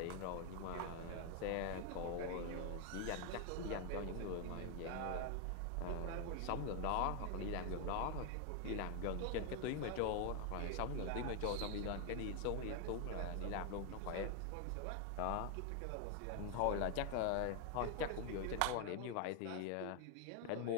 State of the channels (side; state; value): both; different; correlation 0.00